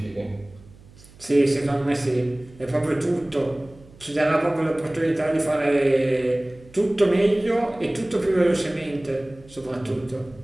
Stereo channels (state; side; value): noise; right; hum, 24 dB below the sound